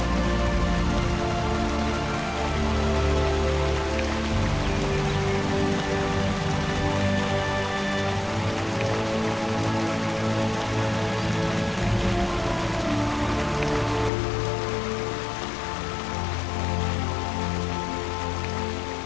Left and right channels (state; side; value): drops out; right; at 14.1 s